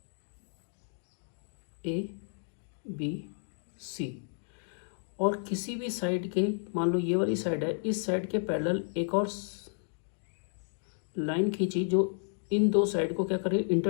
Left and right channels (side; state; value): right; silent; digital silence